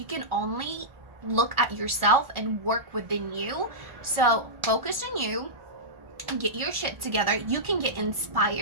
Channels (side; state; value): left; late; 1.4 ms